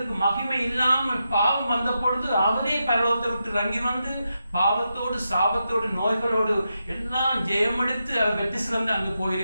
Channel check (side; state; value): both; inverted; correlation -0.86